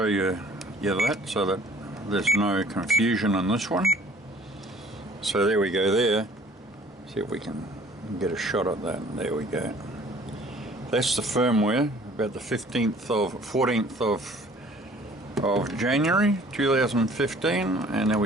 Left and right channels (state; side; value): normal; both; correlation 0.54